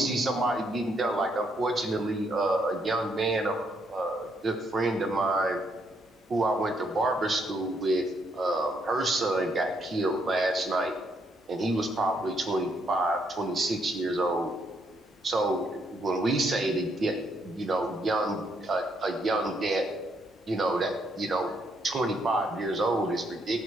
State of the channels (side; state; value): both; normal; correlation 0.74